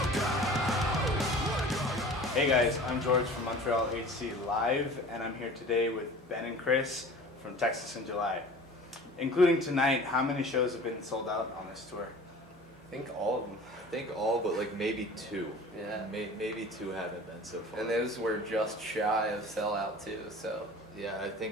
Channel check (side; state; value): both; normal; correlation 0.42